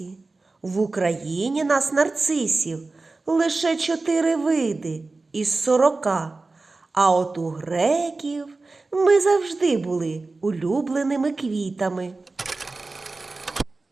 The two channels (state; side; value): quieter; left; 3.5 dB